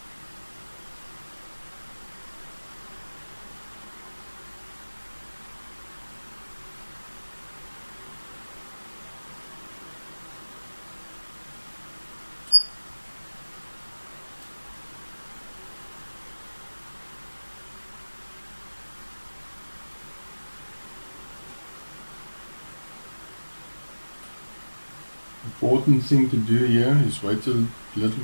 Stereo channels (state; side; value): inverted; both; correlation -1.00